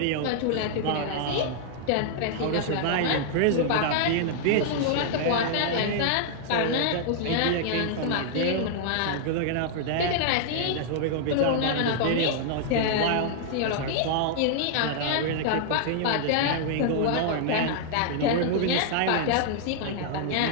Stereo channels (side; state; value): both; different; correlation -0.01